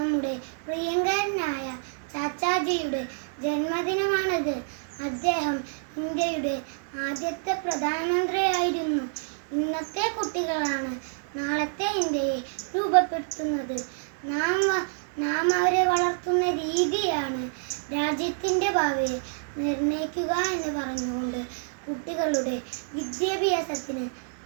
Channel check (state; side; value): silent; left; digital silence